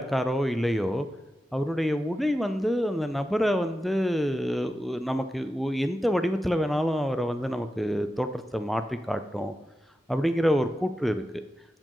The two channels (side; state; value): both; normal; correlation 0.91